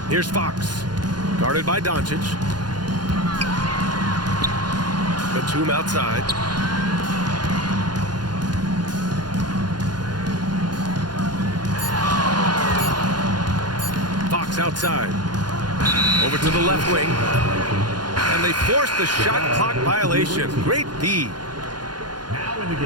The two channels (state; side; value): late; left; 0.70 ms